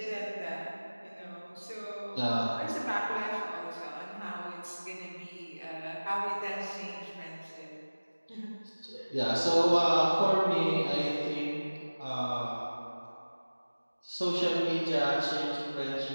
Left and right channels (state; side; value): inverted; both; correlation -1.00